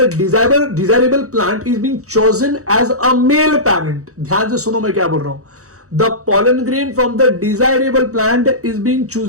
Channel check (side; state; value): left; late; 0.65 ms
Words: desirable plant is being chosen as a male parent। ध्यान से सुनो मैं क्या बोल रहा हूं, the pollen grain from the desirable plant is being